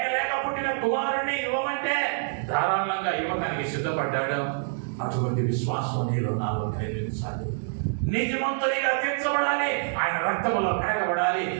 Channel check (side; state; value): left; silent; digital silence